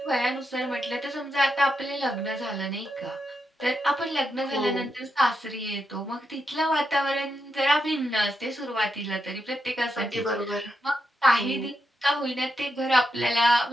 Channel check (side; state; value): both; normal; correlation 0.84